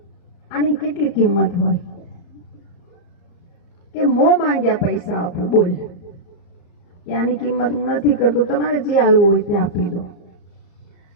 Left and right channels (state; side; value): late; right; 34 ms